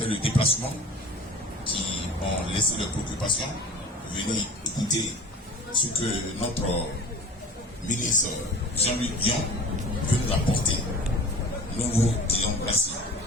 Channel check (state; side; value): normal; both; correlation 0.40